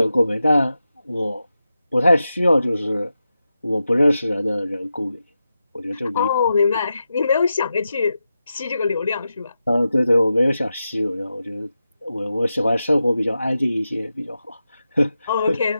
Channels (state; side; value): inverted; both; correlation -0.90